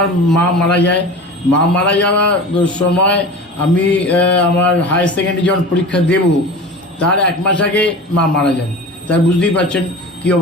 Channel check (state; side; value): normal; both; correlation 0.34